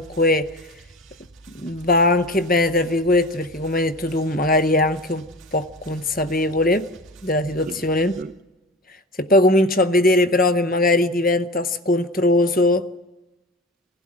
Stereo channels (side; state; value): both; normal; correlation 0.33